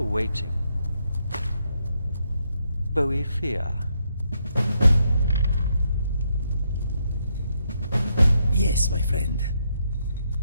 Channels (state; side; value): inverted; both; correlation -0.77